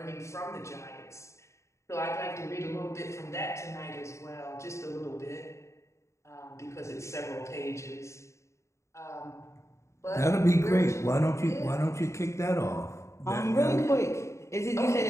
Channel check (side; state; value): right; late; 0.14 ms